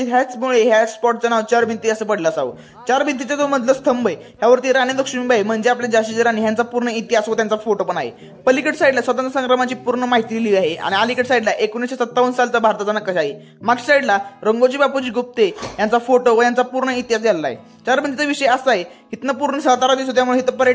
ह्याचमुळे ह्या स्पॉटचं नाव चार भिंती असं पडलं असावं। चार भिंतीचा जो मधला स्तंभ आहे ह्यावरती राणी लक्ष्मीबाई म्हणजे आपल्या झाशीची राणी ह्यांचा पूर्ण इतिहास व त्यांचा फोटो पण आहे। पलीकडे साईडला स्वतंत्र संग्रामाची पूर्ण माहिती लिहिली आहे आणि अलीकडे साईडला 1957 सालचा भारताचा नकाशा आहे। मागच्या साईडला रंगोजी बापूजी गुप्ते यांचा फोटो व यांचा पूर्ण इतिहास लिहिला आहे। चार भिंतीचा विषय असा आहे, इथनं पूर्ण सातारा दिसतो त्यामुळे इथं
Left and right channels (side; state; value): both; identical; correlation 1.00